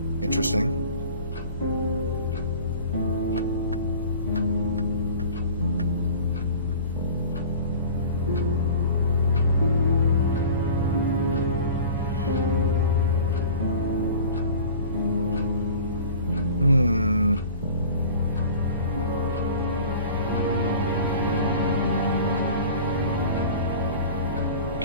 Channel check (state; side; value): inverted; both; correlation -0.41